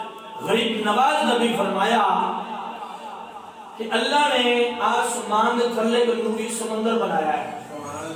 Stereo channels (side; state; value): both; identical; correlation 1.00